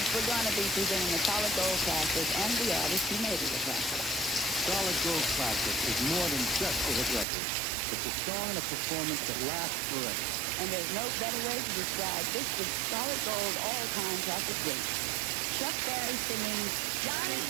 We're going to be presenting the Solid Gold Classic and the artist who made it a classic. Solid Gold Classic is more than just a hit record. It's a song and a performance that lasts forever. And there's no better way to describe this week's Solid Gold all-time classic great. Chuck Berry singing Johnny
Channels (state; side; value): drops out; left; at 7.2 s